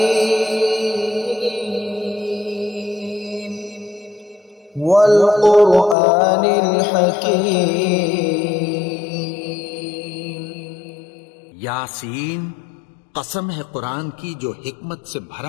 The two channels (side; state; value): right; drops out; at 6.0 s